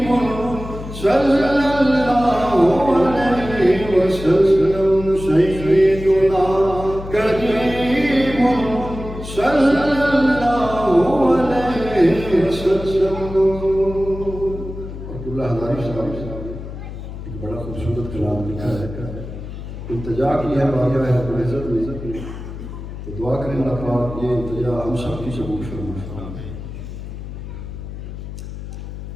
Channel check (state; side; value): noise; left; hum, 10 dB below the sound